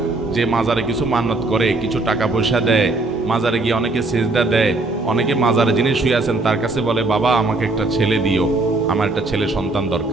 যে মাজারে কিছু মান্নত করে, কিছু টাকা পয়সা দেয়, মাজারে গিয়ে অনেকে সেজদা দেয়, অনেকে মাজারে যিনি শুয়ে আছেন তার কাছে বলে, বাবা আমাকে একটা ছেলে দিও, আমার একটা ছেলে সন্তান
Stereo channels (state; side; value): quieter; left; 3.1 dB